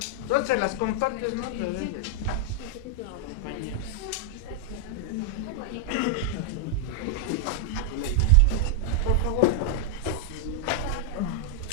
Entonces las compartes, ¿no? Compañeros. Por favor.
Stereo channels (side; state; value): both; normal; correlation -0.02